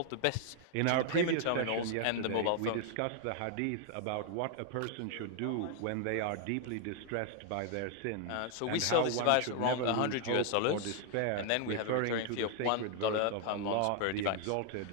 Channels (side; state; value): both; different; correlation 0.00